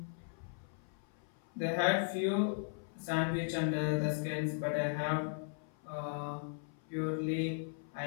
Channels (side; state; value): right; silent; 53 dB below the other